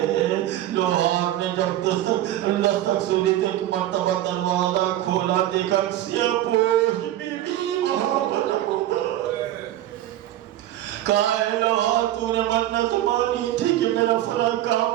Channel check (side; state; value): left; quieter; 13.5 dB